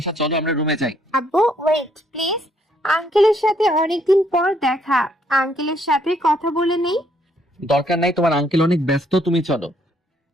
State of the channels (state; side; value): normal; both; correlation 0.69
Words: চলো আমরা রুমে যাই। আব্বু ওয়েট প্লিজ, আঙ্কেলের সাথে অনেকদিন পর দেখা, আঙ্কেলের সাথে কথা বলে নেই। দরকার নাই, তোমার আঙ্কেল অনেক ব্যস্ত, তুমি চলো।